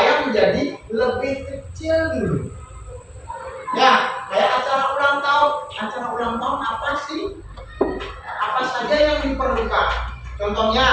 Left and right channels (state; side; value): identical; both; correlation 1.00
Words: menjadi lebih kecil dulu. Ya, kayak acara ulang tahun. Acara ulang tahun apa sih? Apa saja yang diperlukan?